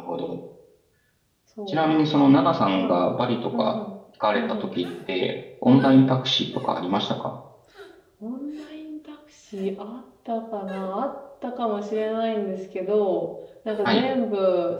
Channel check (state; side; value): identical; both; correlation 1.00